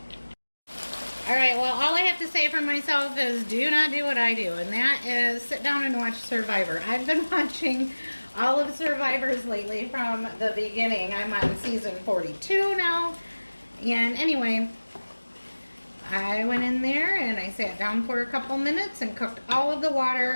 Alright, well, all I have to say for myself is do not do what I do, and that is sit down and watch Survivor. I've been watching all of Survivors lately from the beginning. I'm on season 42 now, and anyway, I went in there and I sat down for a couple minutes and cooked all of the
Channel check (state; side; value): inverted; both; correlation -1.00